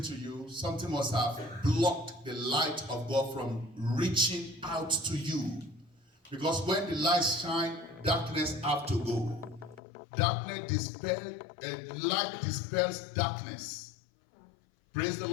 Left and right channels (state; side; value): drops out; right; at 9.8 s